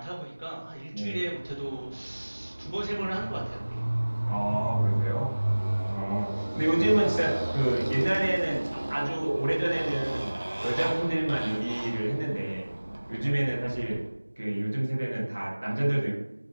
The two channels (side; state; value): both; inverted; correlation -1.00